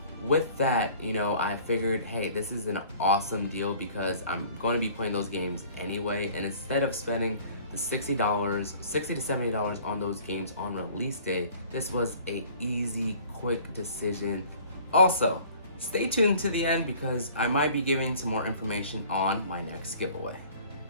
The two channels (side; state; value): both; inverted; correlation -0.50